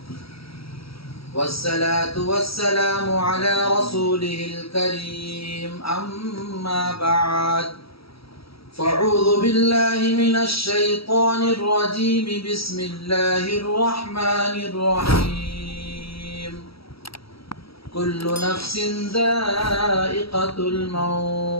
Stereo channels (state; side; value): late; right; 0.76 ms